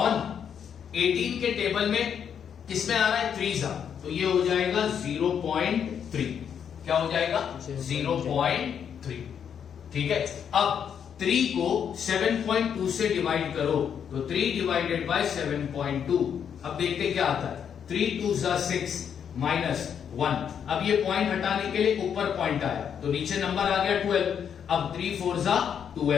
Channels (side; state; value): right; quieter; 8.0 dB